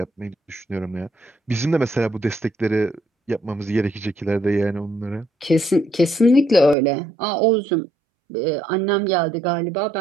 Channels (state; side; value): drops out; left; at 6.8 s